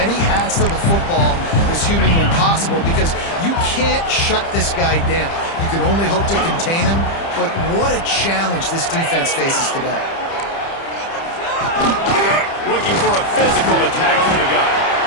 hats to the football as humanly possible because you can't shut this guy down. You can only hope to contain him, but what a challenge this defense faces today. Looking for a physical attack from the gun.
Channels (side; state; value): right; late; 30 ms